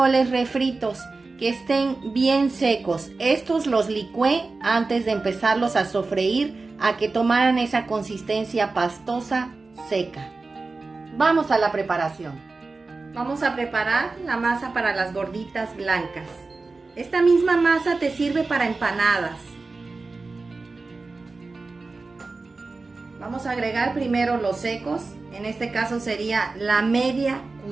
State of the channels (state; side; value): quieter; left; 3.7 dB